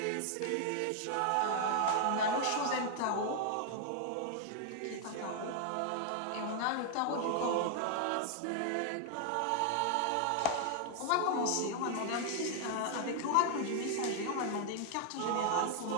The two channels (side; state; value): both; different; correlation 0.00